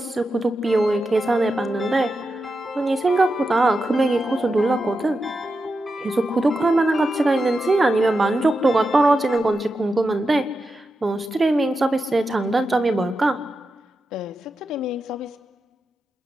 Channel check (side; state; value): both; normal; correlation 0.89